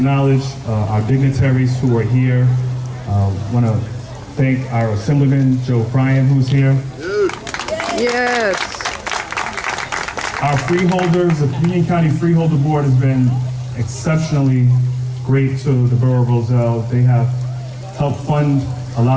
our dignitaries who are here. I want to thank our Assemblyman, Joe Bryan, who's here. Yes. Our freeholders, the Union County Freeholder Board has been exceptionally great to the Borough of Roselle. They have helped fund a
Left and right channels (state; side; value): identical; both; correlation 1.00